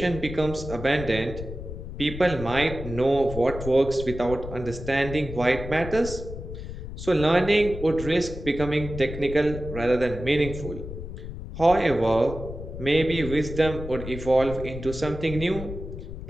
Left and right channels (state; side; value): noise; left; rumble, 9 dB below the sound